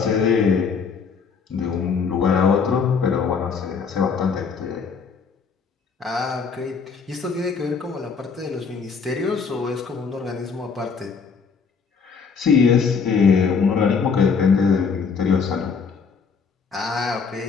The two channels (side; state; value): right; quieter; 5.6 dB